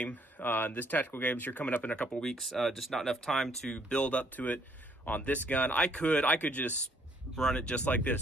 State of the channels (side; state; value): both; normal; correlation 0.66